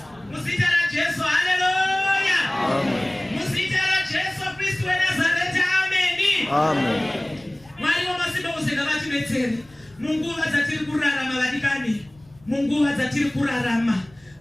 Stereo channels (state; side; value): noise; left; rumble, 29 dB below the sound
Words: Muzita raJesu, haleluya. Muzita raJesu Kristu weNazareti, amen. Amen. Mwari wamasimba ose ngavatibetsere munguva dzatiri kurarama vadikani, munguva dzatiri kurarama.